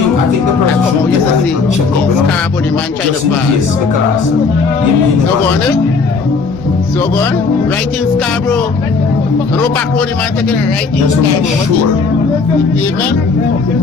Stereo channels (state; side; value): quieter; right; 4.5 dB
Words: the person I come out yesterday. check up, you know? Scarborough, the man trying to Just in pass. case, because you mean So go on, eh? So go on. Right in Scarborough. No back road, the man taking a right in just make Scarborough. sure. Pavement.